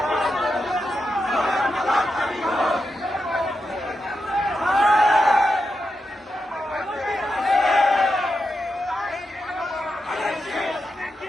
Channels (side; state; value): both; normal; correlation 0.87